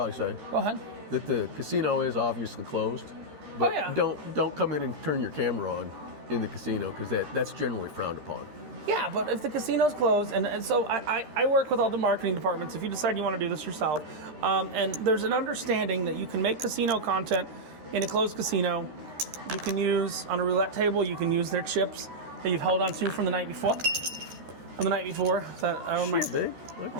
say. Go ahead. That the casino is obviously closed. But don't come in and turn your camera on in the casino because that's generally frowned upon. Yeah, but if the casino's closed, and so I work with all the marketing departments, if you decide you want to do this yourself, and there's an understanding that you can make casino content in a closed casino. You can use, on a roulette table, you can use their chips that you've held on to from the night before. Shit, babe. I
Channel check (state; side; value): late; left; 13 ms